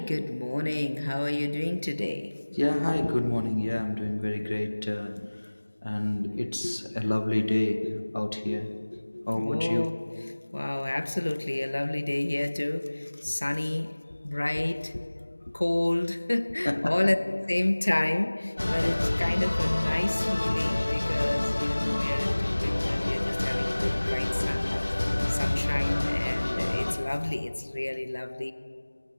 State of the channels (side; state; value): both; inverted; correlation -1.00